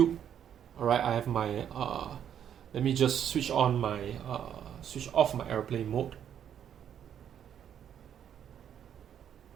alright, I have my let me just switch off my airplane mode.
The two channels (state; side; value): quieter; left; 9.3 dB